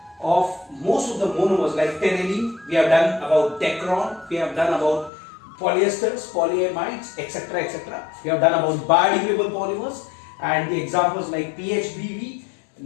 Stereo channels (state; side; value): drops out; right; at 5.1 s